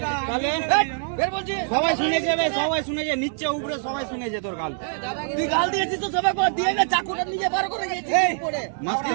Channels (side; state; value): left; silent; digital silence